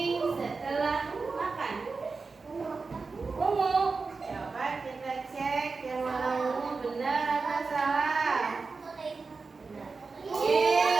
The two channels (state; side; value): quieter; left; 4.3 dB